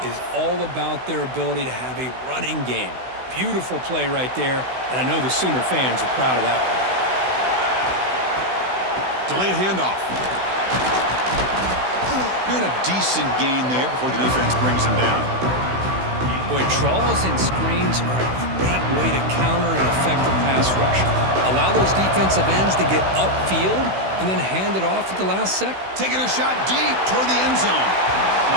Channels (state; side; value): late; left; 16 ms